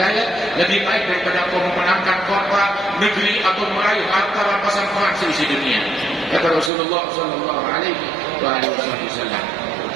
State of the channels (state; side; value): drops out; left; at 6.7 s